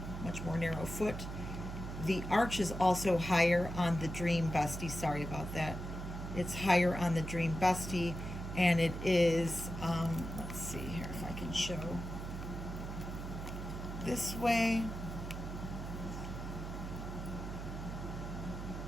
much more narrow foot. The arch is also higher on the Dream Bestie. Sorry about that. It's higher on the Dream Bestie, and it is, let's see here if I can show this way.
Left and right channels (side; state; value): right; noise; hum, 7 dB below the sound